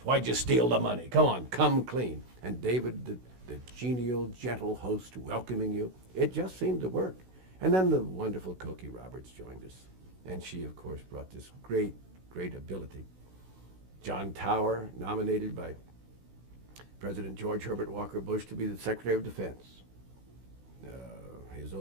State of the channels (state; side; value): late; left; 16 ms